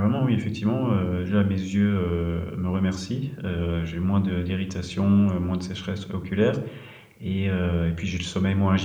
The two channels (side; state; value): both; identical; correlation 1.00